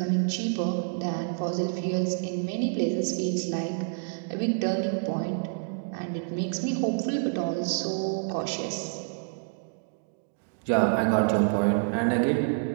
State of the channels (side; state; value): left; silent; digital silence